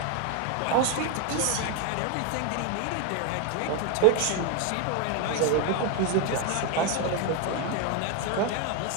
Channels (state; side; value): different; both; correlation 0.02